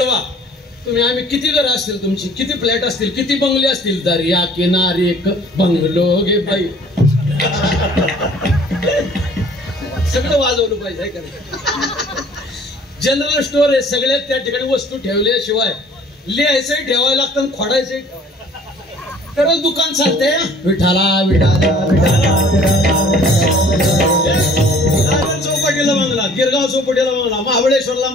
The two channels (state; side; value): normal; both; correlation 0.53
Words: तुम्ही, आम्ही किती घर असतील तुमची, किती फ्लॅट असतील, किती बंगले असतील, दर्या किनारी एक बंगलो गे बाई. सगळं वाजवलं पाहिजे का नाही. जनरल स्टोअर आहे, सगळ्यात त्या ठिकाणी वस्तू ठेवल्याशिवाय लिहायचंही ठेवायला लागतं, खोडायचंही तरच दुकान चालते. विठाला विठाला चौपाटीला बंगला, गिरगाव चौपाटीला बंगला, महाबळेश्वरला